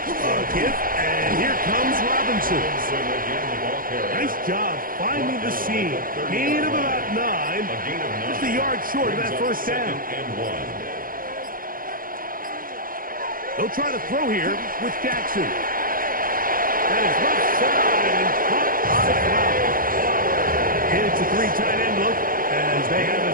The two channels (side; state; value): left; late; 0.41 ms